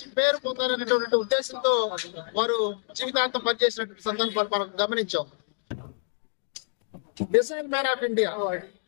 పేరు పొందాలనేటువంటి ఉద్దేశంతో వారు జీవితాంతం పనిచేసినటువంటి సందర్భాలు మనం గమనించాం। మిసైల్ మ్యాన్ ఆఫ్ ఇండియా,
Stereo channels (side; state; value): right; silent; digital silence